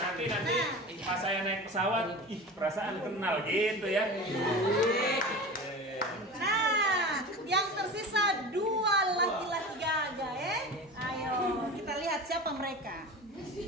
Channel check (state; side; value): normal; both; correlation 0.32